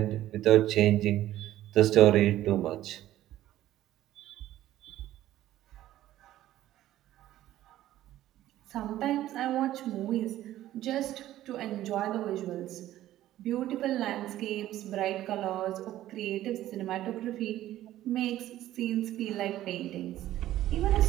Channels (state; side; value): quieter; left; 13.8 dB